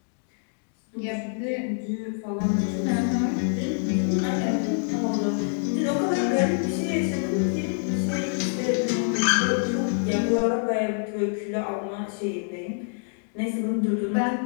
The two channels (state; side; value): silent; right; 61 dB below the other